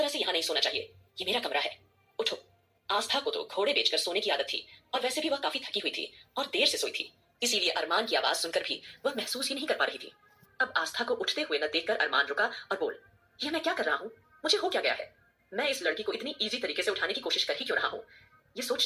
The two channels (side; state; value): both; identical; correlation 1.00